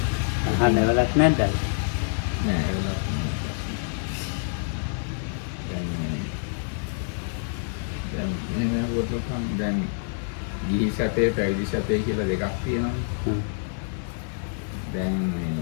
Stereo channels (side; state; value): right; silent; 61 dB below the other